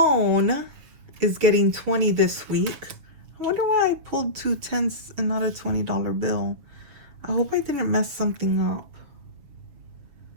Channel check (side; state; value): left; late; 7.0 ms